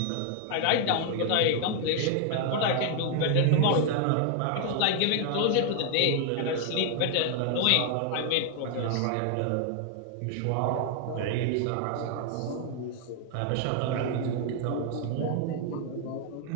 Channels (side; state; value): both; different; correlation 0.00